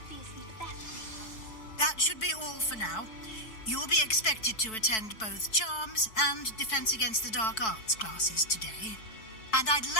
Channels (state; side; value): late; right; 4.6 ms